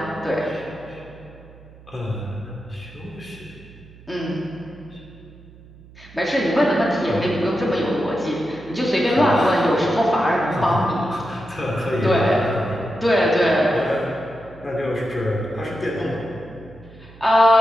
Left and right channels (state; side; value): noise; right; hum, 22 dB below the sound